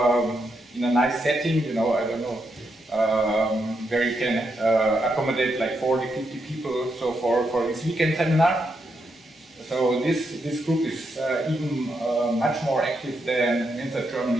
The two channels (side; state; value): both; normal; correlation 0.81